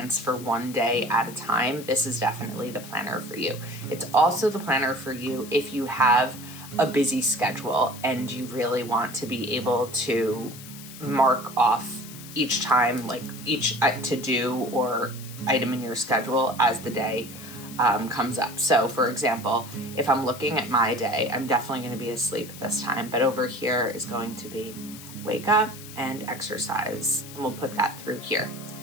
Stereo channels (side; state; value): left; noise; hiss, 15 dB below the sound